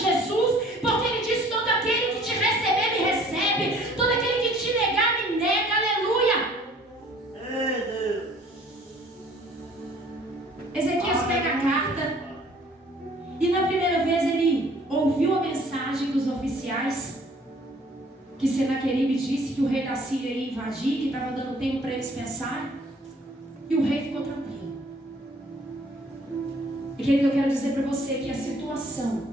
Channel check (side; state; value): both; normal; correlation 0.55